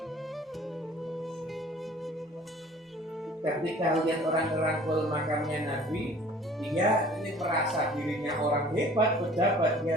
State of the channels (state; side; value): normal; both; correlation 0.50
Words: Ketika lihat orang ngerangkul makamnya Nabi, dia ini merasa dirinya orang hebat, pejabat,